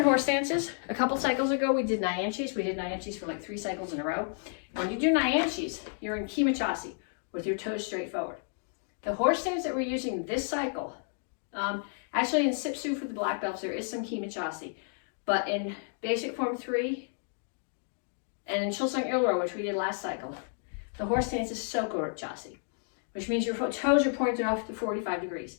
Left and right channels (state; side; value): silent; right; 57 dB below the other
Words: horse stances. A couple cycles ago, we did nyanchis. We did nyanchis for like 3 cycles in a row. When you do nyanchis, you're in kimachasi with your toes straight forward. The horse stance that we're using this cycle, actually in Sipsu for the black belts, there is some kimachasi. But in basic form 3 and in Chilsung Ilro, which we did last cycle, the horse stance is Soko-chasi, which means your toes are pointed off to 45 degrees.